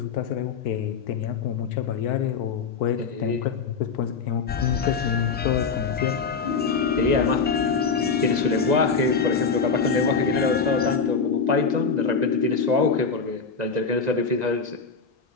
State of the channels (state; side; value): quieter; right; 5.2 dB